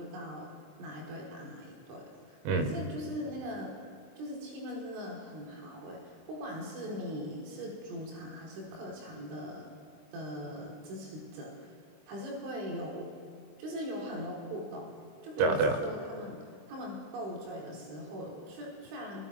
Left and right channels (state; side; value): late; left; 24 ms